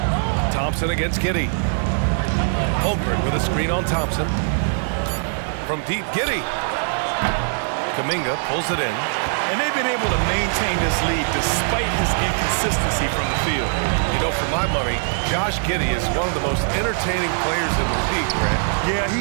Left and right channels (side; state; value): left; silent; 63 dB below the other